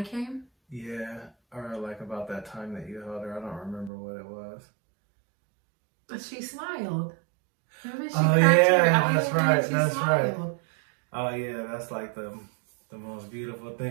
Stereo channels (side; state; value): left; drops out; at 3.9 s